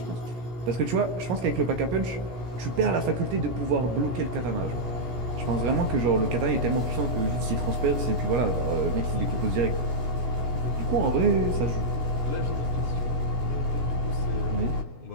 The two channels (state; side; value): late; left; 17 ms